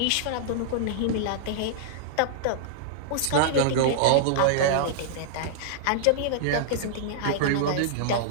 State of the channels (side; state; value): both; different; correlation -0.01